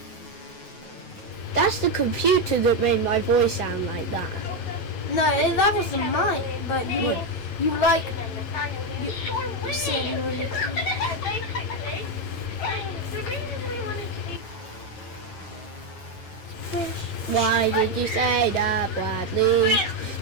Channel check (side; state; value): right; late; 8.8 ms